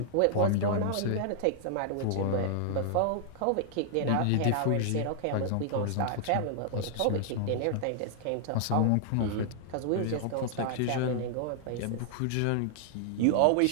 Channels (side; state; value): both; different; correlation -0.01